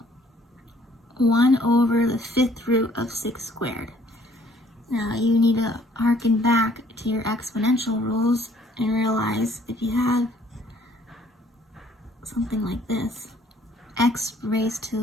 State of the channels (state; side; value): normal; both; correlation 0.60